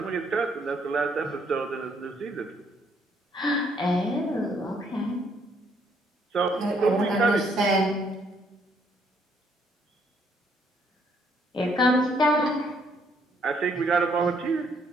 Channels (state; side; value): normal; both; correlation 0.68